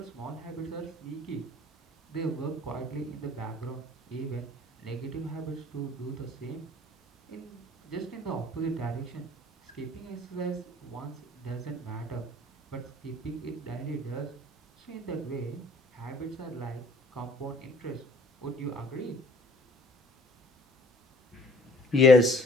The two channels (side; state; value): both; normal; correlation 0.55